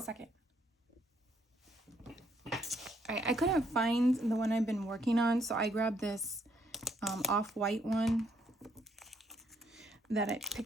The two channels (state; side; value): normal; both; correlation 0.71